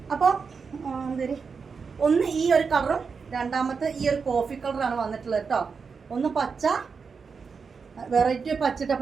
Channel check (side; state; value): left; quieter; 5.4 dB